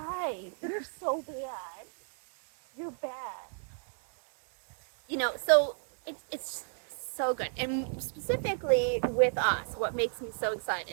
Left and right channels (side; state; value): left; silent; 56 dB below the other